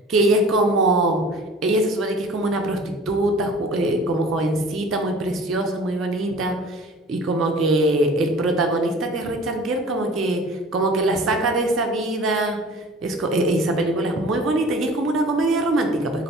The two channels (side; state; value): both; normal; correlation 0.45